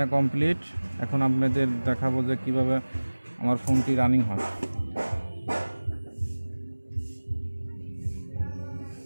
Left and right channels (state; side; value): inverted; both; correlation -1.00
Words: কমপ্লিট। এখন আপনাদের দেখাবো যে কিভাবে আমার ফোনটি রানিং হয়।